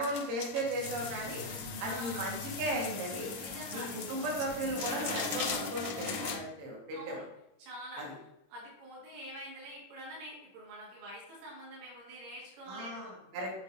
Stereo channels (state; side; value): late; left; 21 ms